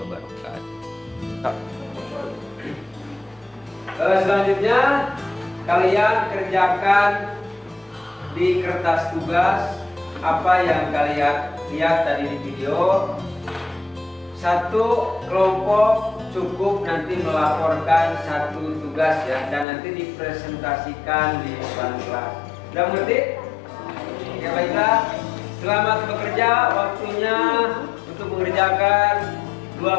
wabarakatuh. Selanjutnya kalian kerjakan di kertas tugas apa yang kalian lihat tadi di video. Satu kelompok cukup nanti melaporkan satu tugas ya, dan nanti dipresentasikan di depan kelas. Sudah mengerti? Ya baiklah. Selamat bekerja. Waktunya untuk mengerjakan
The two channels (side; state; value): right; drops out; at 19.7 s